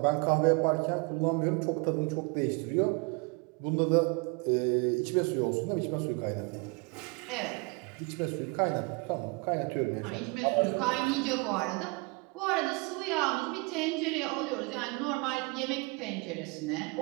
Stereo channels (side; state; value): left; quieter; 29.4 dB